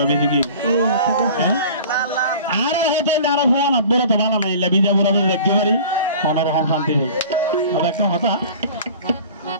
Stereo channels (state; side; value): inverted; both; correlation -0.43